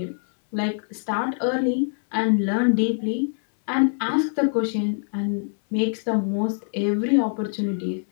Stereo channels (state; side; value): silent; right; 62 dB below the other